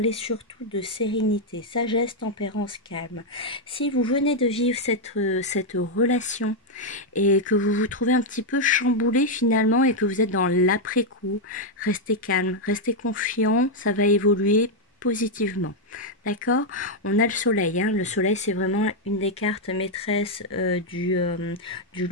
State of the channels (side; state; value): both; normal; correlation 0.00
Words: surtout de sérénité, sagesse, tempérance, calme. Si vous venez de vivre cette relation et que vous vous trouvez un petit peu chamboulé finalement et que vous êtes dans l'après-coup, restez calme, restez confiant, ça va évoluer positivement. D'accord? On a le soleil, hein. Le soleil, c'est vraiment une des cartes maîtresses du